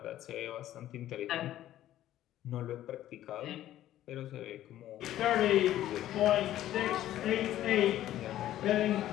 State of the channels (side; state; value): right; quieter; 13.1 dB